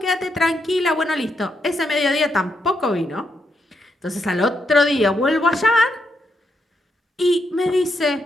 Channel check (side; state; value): both; normal; correlation 0.80